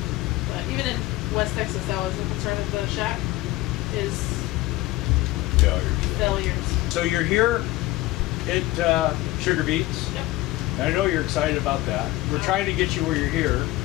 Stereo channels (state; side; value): quieter; right; 18.1 dB